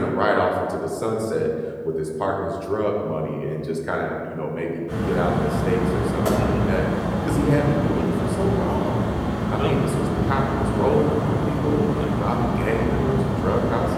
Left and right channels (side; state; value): both; identical; correlation 1.00